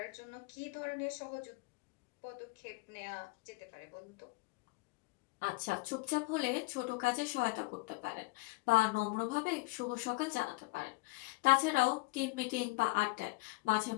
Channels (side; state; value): right; quieter; 24.6 dB